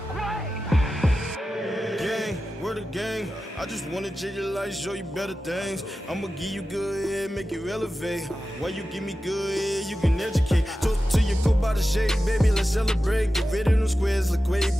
Word of gang, I just wanna change your life, show you better things. I'ma give you good head, make you elevate. While you give me good head, you can educate. Talk to your go by the shape, baby, let's celebrate. Get rid of them squares, look way,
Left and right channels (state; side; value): normal; both; correlation 0.93